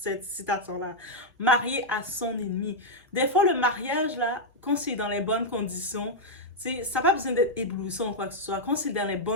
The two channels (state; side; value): normal; both; correlation -0.03